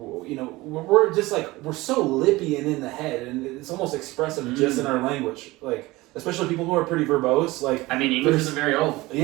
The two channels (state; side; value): quieter; left; 20.3 dB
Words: just like, we're so lippy and in the head, and it's almost expressive just in our language, like especially people who are pretty verbose. Like, I mean, English isn't very old.